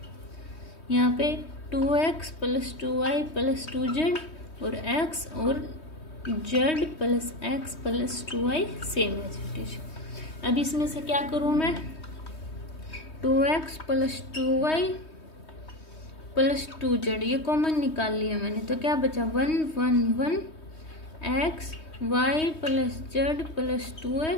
यहाँ पे 2x plus 2y plus 2z और x और z plus x plus 2y same as it is. अब इसमें से क्या करूँ मैं, 2x plus 2y plus 2z ये कॉमन निकाल लिया मैंने, तो क्या बचा 1 1 1 x y plus z plus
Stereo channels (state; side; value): late; right; 3.2 ms